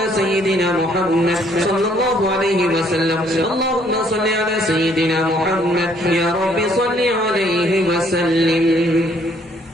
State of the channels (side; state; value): both; normal; correlation 0.64